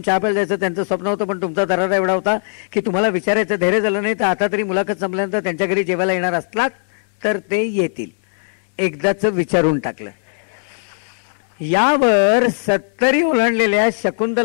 चहा प्यायला जायचं त्यांचं स्वप्न होतं, पण तुमचा दरारा एवढा होता की तुम्हाला विचारायचं धैर्य झालं नाही. तर आता तरी मुलाखत संपल्यानंतर त्यांच्या घरी जेवायला येणार असलात तर ते येतील. एकदाच विचारून टाकलं. यावर 70 ओलांडलेल्या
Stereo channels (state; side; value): silent; right; 66 dB below the other